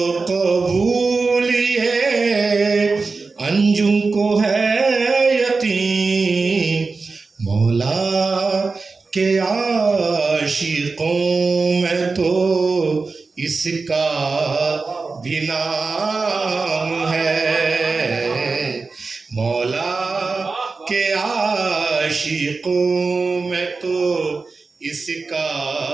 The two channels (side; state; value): left; quieter; 4.1 dB